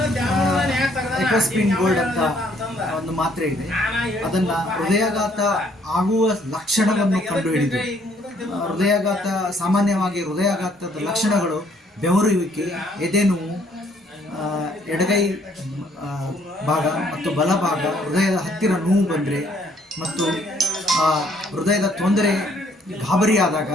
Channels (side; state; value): both; normal; correlation 0.65